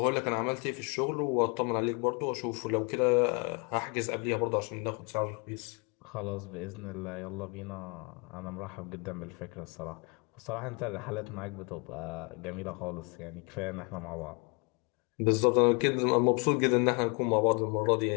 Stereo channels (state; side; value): quieter; right; 32.6 dB